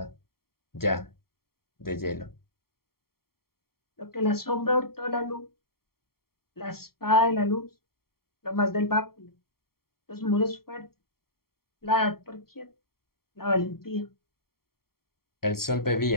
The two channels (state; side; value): late; right; 0.93 ms